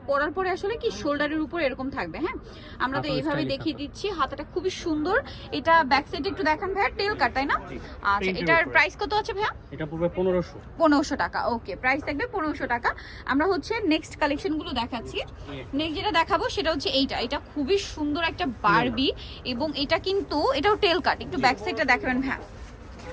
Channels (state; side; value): identical; both; correlation 1.00